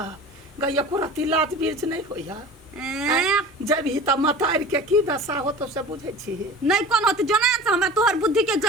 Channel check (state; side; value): normal; both; correlation 0.38